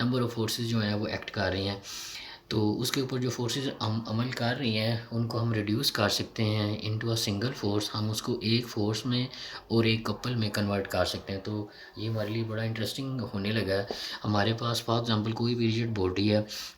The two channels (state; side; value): identical; both; correlation 1.00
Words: ऑफ फोर्सेस जो हैं वो एक्ट कर रही हैं। तो उसके ऊपर जो फोर्सेस हम अमल कर रही हैं उनको हम रिड्यूस कर सकते हैं इनटू अ सिंगल फोर्स। हम उसको एक फोर्स में और एक कपल में कन्वर्ट कर सकते हैं। तो ये हमारे लिए बड़ा इंटरेस्टिंग होने लगा है। हमारे पास फॉर एग्ज़ाम्पल कोई भी रिजिड बॉडी है।